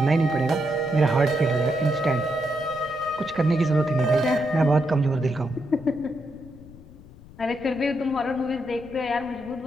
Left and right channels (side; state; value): left; noise; rumble, 20 dB below the sound